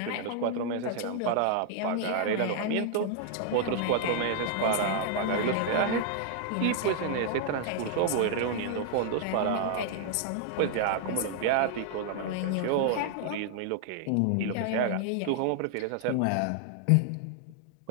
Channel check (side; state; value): both; different; correlation 0.00